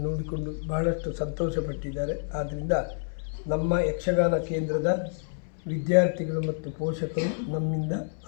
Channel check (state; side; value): silent; right; 59 dB below the other